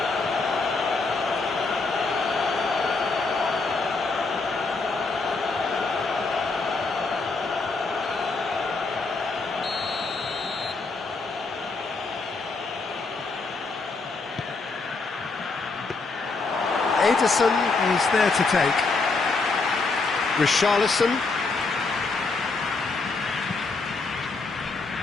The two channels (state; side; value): quieter; right; 3.9 dB